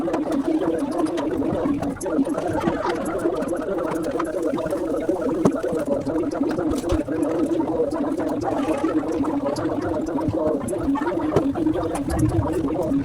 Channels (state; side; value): identical; both; correlation 1.00